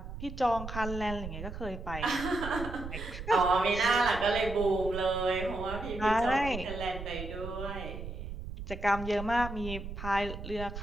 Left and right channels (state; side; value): noise; right; rumble, 9 dB below the sound